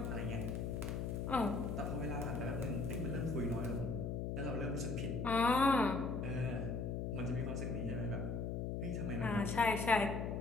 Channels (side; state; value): left; noise; hum, 2 dB below the sound